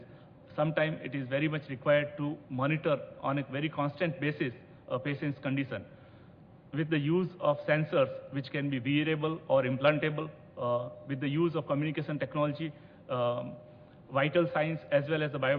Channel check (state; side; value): identical; both; correlation 1.00